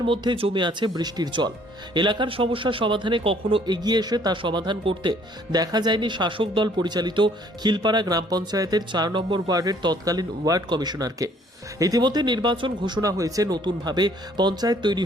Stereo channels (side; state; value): both; normal; correlation 0.60